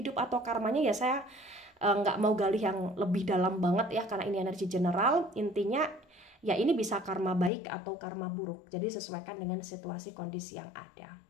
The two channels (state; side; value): drops out; right; at 7.5 s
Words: atau karmanya ya, saya nggak mau gali yang lebih dalam banget ya, karena ini energi general. Intinya ya ini bisa karma baik atau karma buruk, jadi sesuaikan dengan situasi kondisi yang ada.